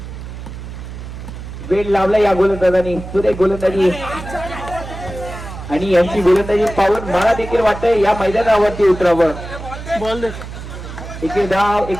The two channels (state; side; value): noise; right; hum, 11 dB below the sound